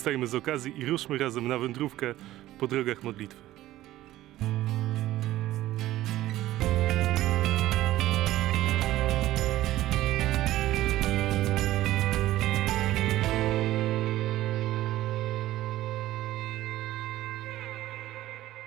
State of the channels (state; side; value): quieter; left; 15.1 dB